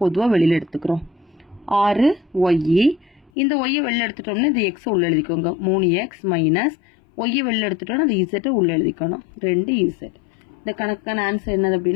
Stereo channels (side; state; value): right; drops out; at 3.3 s